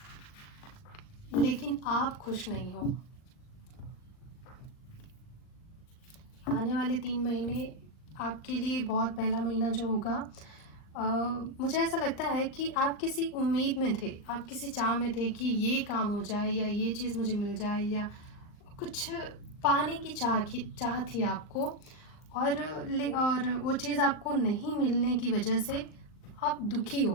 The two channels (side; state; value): right; late; 39 ms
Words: लेकिन आप खुश नहीं हो। आने वाले 3 महीने आपके लिए बहुत पहला महीना जो होगा, मुझे ऐसा लगता है कि आप किसी उम्मीद में थे, आप किसी चाह में थे कि ये काम हो जाए या ये चीज़ मुझे मिल जाए, या कुछ पाने की चाह थी आपको। और वो चीज़ आपको नहीं मिलने की वजह से आप दुखी